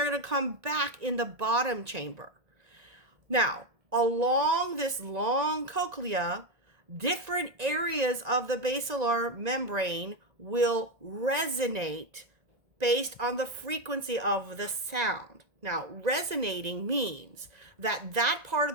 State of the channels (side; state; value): left; late; 1.9 ms